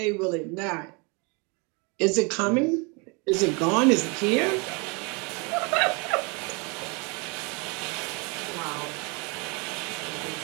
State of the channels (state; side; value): quieter; left; 30.9 dB